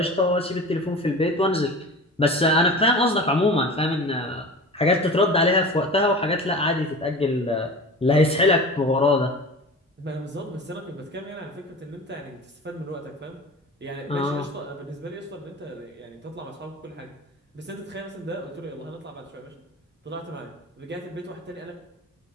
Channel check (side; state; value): both; normal; correlation 0.34